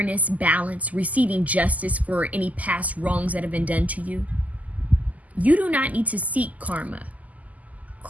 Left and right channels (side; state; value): left; late; 0.076 ms